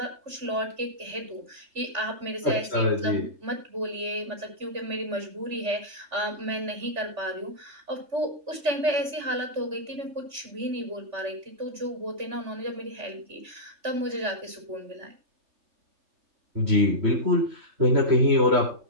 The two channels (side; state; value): left; late; 3.4 ms